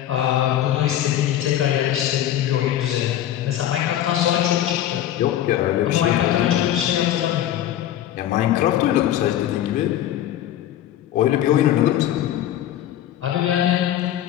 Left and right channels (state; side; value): quieter; right; 12.0 dB